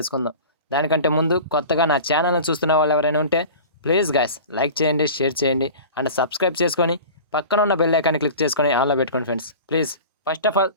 దానికంటే ముందు కొత్తగా నా ఛానల్ని చూస్తున్న వాళ్ళు ఎవరైనా ఉంటే ప్లీజ్ గైస్ లైక్ చేయండి, షేర్ చేయండి అండ్ సబ్స్క్రైబ్ చేసుకొని పక్కన ఉన్న బెల్ ఐకాన్ని క్లిక్ చేసుకొని ఆన్లో పెట్టుకోండి friends please. First of all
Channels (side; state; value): both; inverted; correlation -0.37